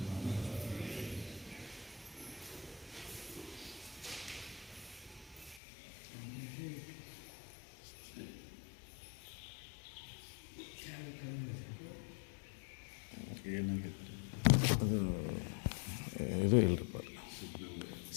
ಏನಾಗಿತ್ತು? ಅದು ಇದು ಇಲ್ಲರಿಪ್ಪ,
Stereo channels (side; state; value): right; drops out; at 5.6 s